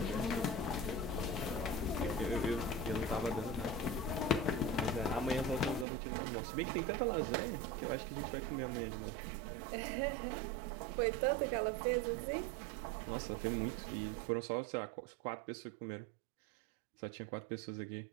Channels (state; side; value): drops out; left; at 5.9 s